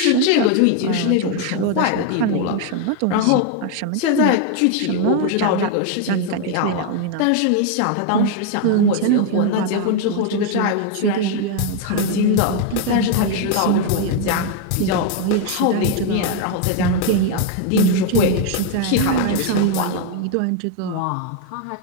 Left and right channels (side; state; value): both; different; correlation 0.01